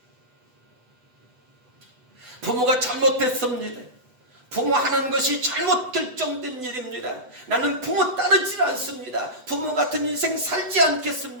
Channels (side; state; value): left; late; 8.0 ms